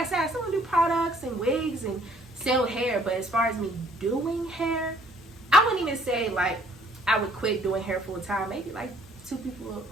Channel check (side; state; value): both; normal; correlation 0.61